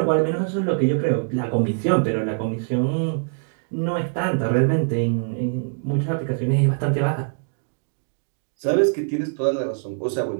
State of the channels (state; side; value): silent; left; digital silence